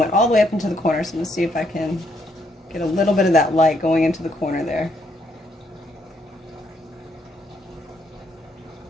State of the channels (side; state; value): both; normal; correlation 0.73